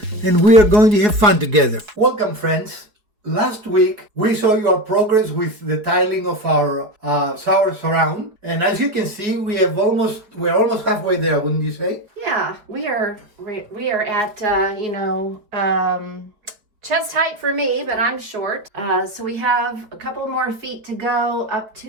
and we are going to have fun together. Welcome, friends. Last week we saw you our progress with the tiling of our shower surround, and as you can see, we're almost halfway there, wouldn't you say? Yeah, we are at chest height for me, but I'm short. So we have a couple more feet to go up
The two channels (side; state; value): left; late; 4.8 ms